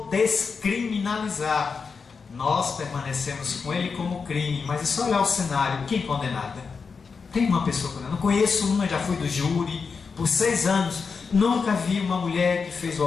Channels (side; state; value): right; quieter; 5.3 dB